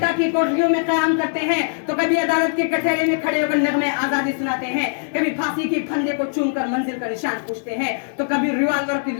کی کوٹریوں میں قیام کرتے ہیں تو کبھی عدالت کے کٹہرے میں کھڑے ہو کر نغمے آزادی سناتے ہیں، کبھی پھانسی کے پھندے کو چوم کر منزل کا نشان پوچھتے ہیں تو کبھی ریوالور کی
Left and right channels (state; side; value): silent; right; digital silence